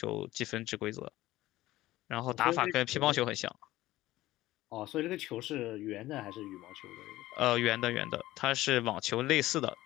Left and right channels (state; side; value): quieter; right; 16.6 dB